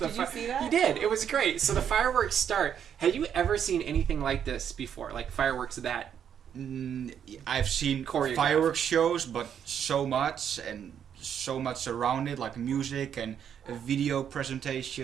Did you see that? He did. It was great. So the fireworks start. Have you ever seen anything like this before? Like fireworks that? I've seen Choreographed. fireworks shows, but so much around it, like music and a video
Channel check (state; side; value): quieter; left; 8.6 dB